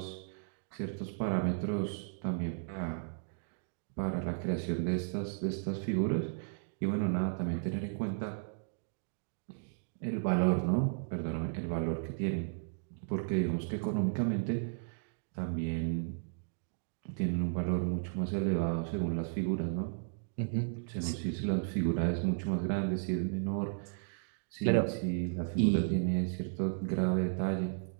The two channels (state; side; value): silent; left; digital silence